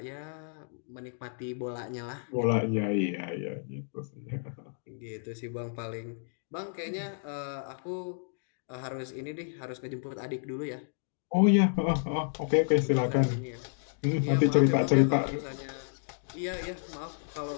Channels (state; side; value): silent; right; digital silence